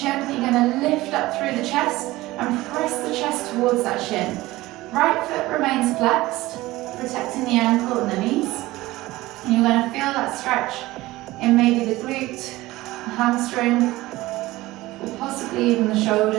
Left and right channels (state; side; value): quieter; left; 18.4 dB